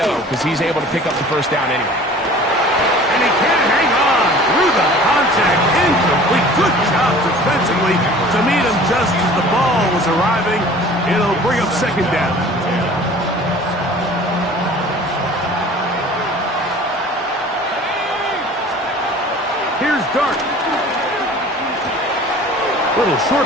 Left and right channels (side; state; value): both; normal; correlation 0.46